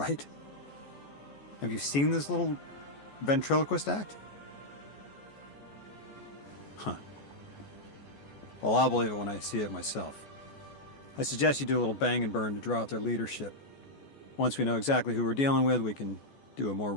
Have you seen this little ventriloquist act? Huh. Well, I'll believe it when I see it myself. I suggest you do a little bang and burn to draw out their leadership. Once we know exactly who we're dealing with, we can do a more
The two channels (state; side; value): late; right; 14 ms